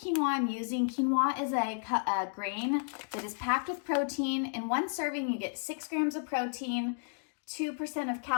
I'm using. Quinoa is a grain that is packed with protein. In one serving, you get 6 grams of protein, 2% of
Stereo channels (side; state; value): right; silent; digital silence